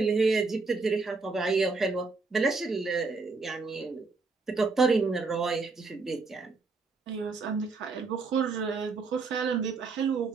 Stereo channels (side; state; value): left; quieter; 4.1 dB